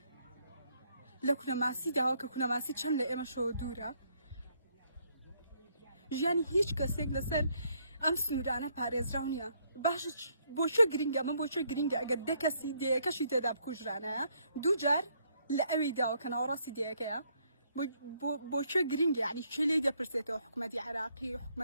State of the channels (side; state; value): both; inverted; correlation -0.70